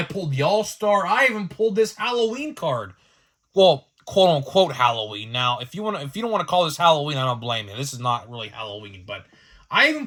pulled the All-Star. I even pulled this Halloween card. Well, quote-unquote Halloween. Now, if you don't want to call this Halloween, I don't blame you. This is not really Halloween, but I even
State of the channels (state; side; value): identical; both; correlation 1.00